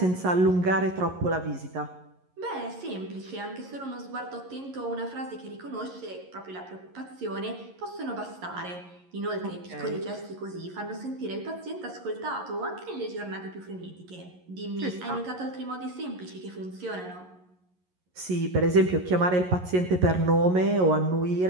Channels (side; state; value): left; late; 11 ms